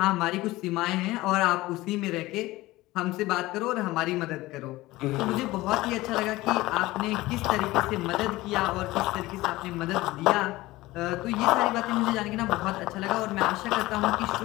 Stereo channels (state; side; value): quieter; right; 18.7 dB